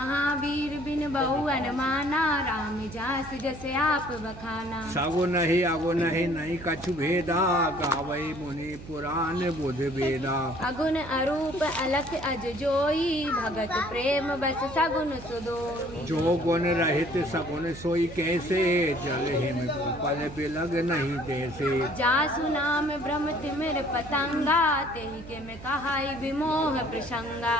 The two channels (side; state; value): right; noise; hum, 15 dB below the sound